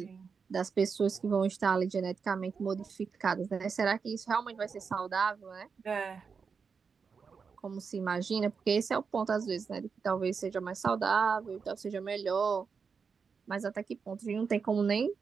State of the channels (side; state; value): left; quieter; 5.6 dB